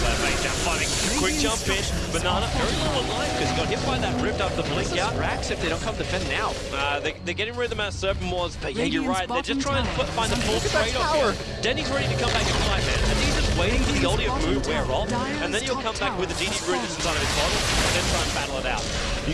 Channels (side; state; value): both; identical; correlation 1.00